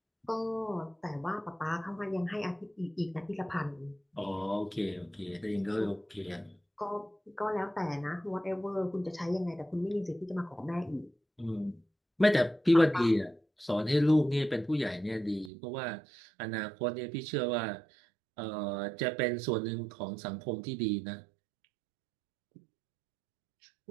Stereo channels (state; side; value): drops out; left; at 15.5 s